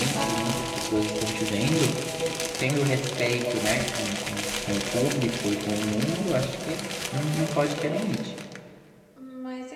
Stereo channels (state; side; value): identical; both; correlation 1.00